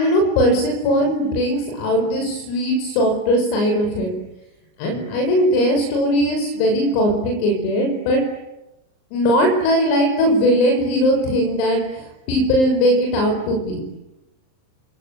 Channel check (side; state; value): right; late; 38 ms